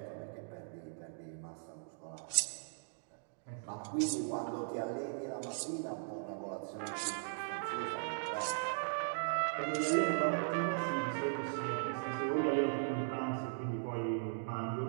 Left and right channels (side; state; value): left; silent; digital silence